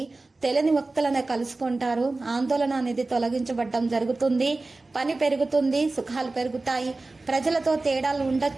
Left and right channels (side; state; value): left; quieter; 3.3 dB